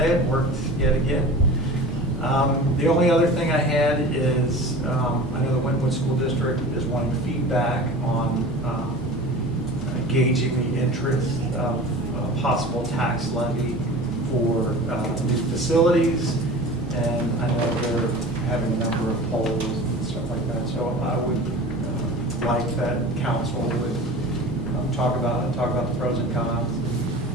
it. Worked yet again. The only other thing I had is I know the Wynwood School District is wanting feedback on gauging the interest of possible tax levy for new facilities, and I know they're having a number of polls and stuff like that. So I would like that council would talk about the pros and cons.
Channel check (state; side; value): normal; both; correlation 0.37